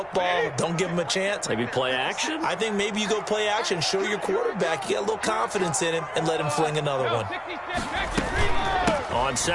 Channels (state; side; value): identical; both; correlation 1.00